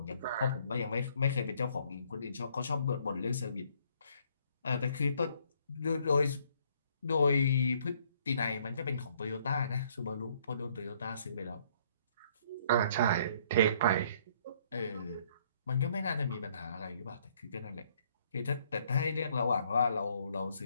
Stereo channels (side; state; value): both; inverted; correlation -0.65